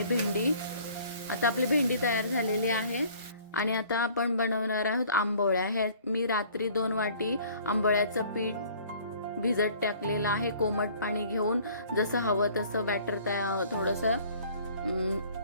आता आपली भेंडी तयार झालेली आहे। आणि आता आपण बनवणार आहोत आंबोळ्या। हे मी रात्री 2 वाटी आंबोळ्याचं पीठ भिजत टाकलेलं आहे। कोमट पाणी घेऊन जसं हवं तसं बॅटर थोडंसं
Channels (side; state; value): both; inverted; correlation -0.53